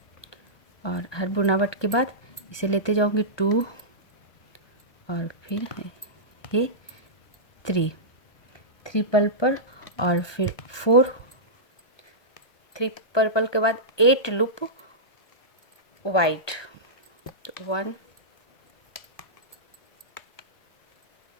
और हर बुनावट के बाद इसे लेते जाऊंगी 2 और फिर ये 3 पर्पल और फिर 4 3 पर्पल के बाद 8 लूप वाइट। 1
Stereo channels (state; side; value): late; right; 1.2 ms